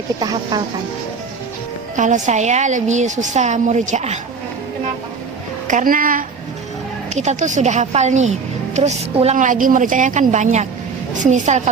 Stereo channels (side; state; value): left; quieter; 5.1 dB